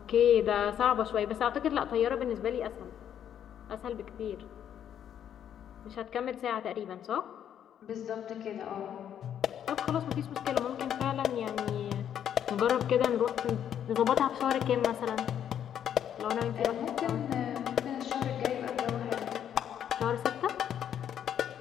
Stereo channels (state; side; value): quieter; right; 9.6 dB